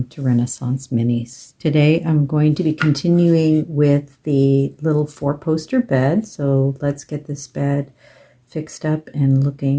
to Renaissance Minis. Today I'm going to be continuing with the little 4-poster bed. So let's get this bed fixed up and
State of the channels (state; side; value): identical; both; correlation 1.00